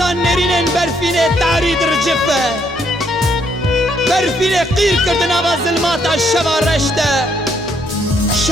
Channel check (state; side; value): normal; both; correlation 0.71